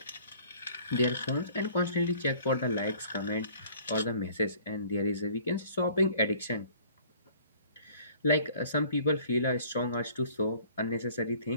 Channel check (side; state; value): both; inverted; correlation -0.53